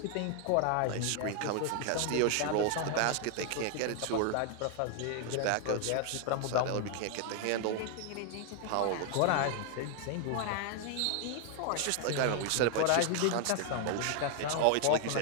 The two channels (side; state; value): both; different; correlation 0.00